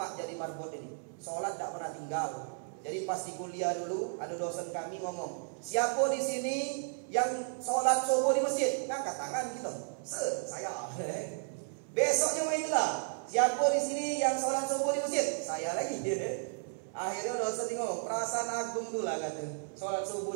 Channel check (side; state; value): left; silent; 55 dB below the other